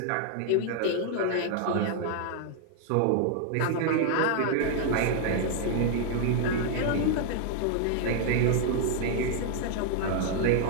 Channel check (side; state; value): both; different; correlation 0.00